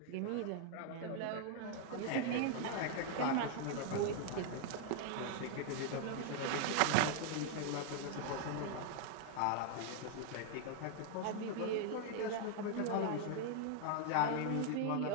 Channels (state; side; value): different; both; correlation 0.00